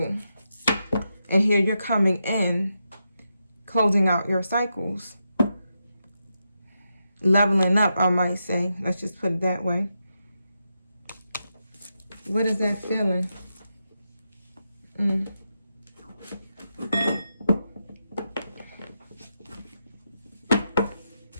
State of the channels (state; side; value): inverted; both; correlation -0.86